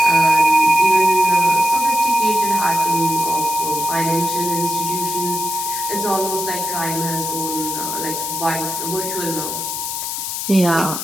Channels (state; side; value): noise; left; hiss, 4 dB below the sound